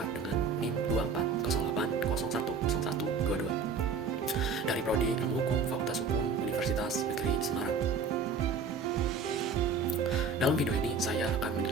dengan NIM 2408010122 dari Prodi Ilmu Hukum Fakultas Hukum Universitas Negeri Semarang. Dalam video ini saya akan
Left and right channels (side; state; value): left; quieter; 4.7 dB